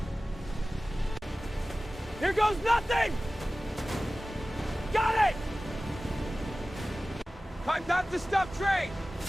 Here goes nothing! Got it! Time not to stop train!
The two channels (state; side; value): normal; both; correlation 0.96